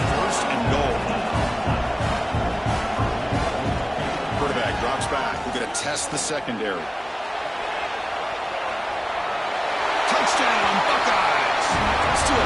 first and goal. Quarterback drops back. We're going to test the secondary. Touchdown, Buckeyes! Still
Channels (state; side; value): identical; both; correlation 1.00